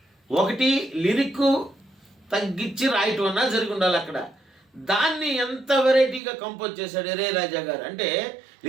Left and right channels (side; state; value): left; drops out; at 6.2 s